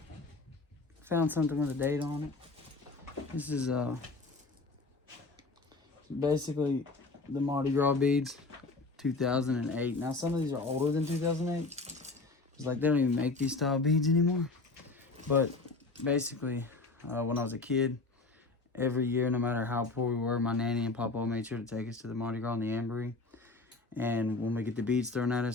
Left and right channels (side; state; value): right; quieter; 3.5 dB